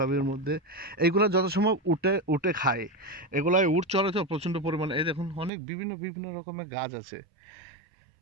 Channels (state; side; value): drops out; left; at 5.5 s